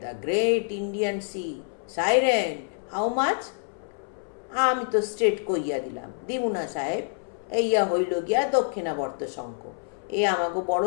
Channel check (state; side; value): silent; right; 60 dB below the other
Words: the great Indian sea, siren, how much? আমি তো স্ট্রেট কইয়া দিলাম, দিবু না সাহেব, এইয়া হইল গিয়া দক্ষিণাবর্ত শঙ্খ, এ আমাকে বড়